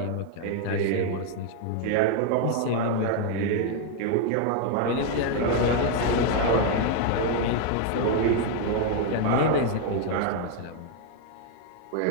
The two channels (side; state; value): both; different; correlation 0.01